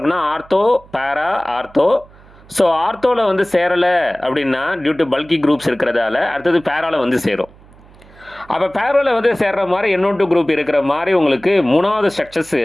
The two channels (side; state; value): right; noise; hum, 25 dB below the sound